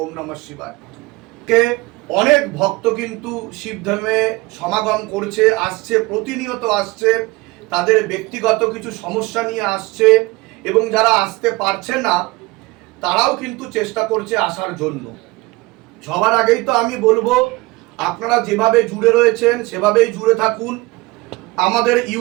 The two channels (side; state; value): left; quieter; 22.5 dB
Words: ওম নমঃ শিবায়। কে অনেক ভক্ত কিন্তু শিবধামে সমাগম করছে, আসছে, প্রতিনিয়ত আসছে। তাদের ব্যক্তিগত কিছু সমস্যা নিয়ে আসছে এবং যারা আসতে পারছে না তারাও কিন্তু চেষ্টা করছে আসার জন্য। সবার আগেই তো আমি বলবো, আপনারা যেভাবে জুড়ে রয়েছেন সেভাবেই জুড়ে থাকুন। আমাদের